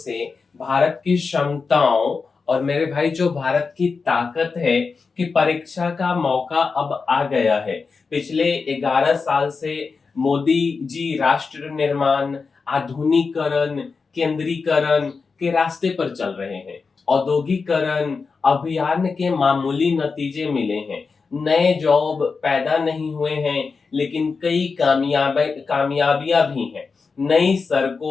भारत की क्षमताओं और मेरे भाई जो भारत की ताकत है कि परीक्षा का मौका अब आ गया है। पिछले 11 साल से मोदी जी राष्ट्र निर्माण, आधुनिकीकरण, केंद्रीकरण के रास्ते पर चल रहे हैं। औद्योगिकरण अभियान के मामूली नतीजे मिले हैं। नए जॉब पैदा नहीं हुए हैं, लेकिन कई कामयाबियां भी हैं। नई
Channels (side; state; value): right; quieter; 4.8 dB